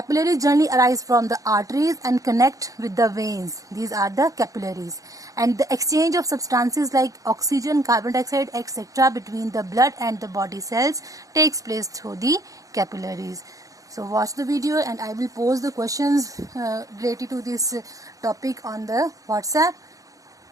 generally arise from the arteries and connect with the veins. These are the capillaries. And the exchange of substances like oxygen, carbon dioxide, etc. between the blood and the body cells takes place through the capillaries. So watch the video and I will post the questions related to this topic on the WhatsApp.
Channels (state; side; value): late; left; 0.17 ms